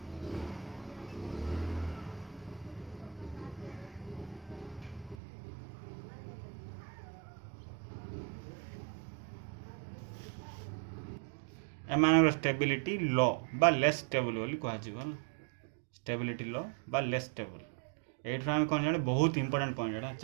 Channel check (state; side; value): drops out; left; at 5.2 s